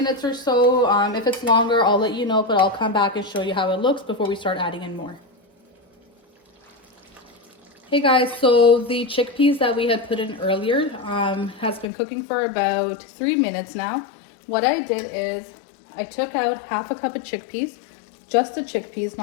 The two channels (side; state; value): right; drops out; at 11.9 s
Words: or so. If it's longer, I'll let you know, but I'll come back and show you how it looks before we start adding in more. Hey guys, so the chickpeas that we had put in earlier has been cooking for about 3 minutes now. What I did is I took out half a cup of chickpeas, just the chickpeas,